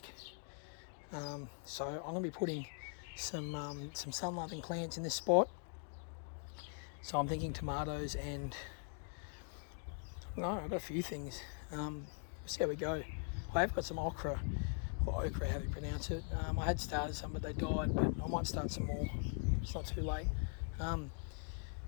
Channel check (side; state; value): right; silent; 50 dB below the other